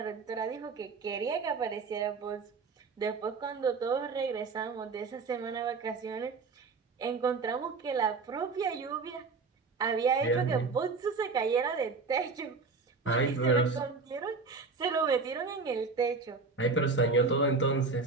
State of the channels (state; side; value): quieter; left; 4.4 dB